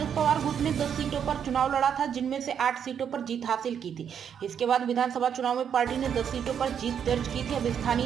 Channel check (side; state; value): left; quieter; 8.1 dB